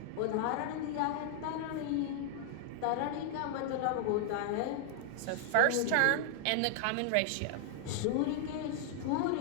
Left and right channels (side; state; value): both; different; correlation -0.01